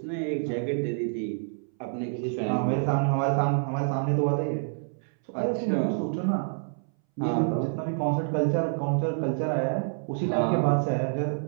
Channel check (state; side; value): silent; left; 60 dB below the other